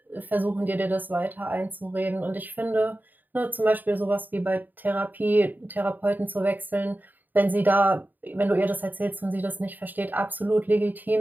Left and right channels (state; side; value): late; left; 0.087 ms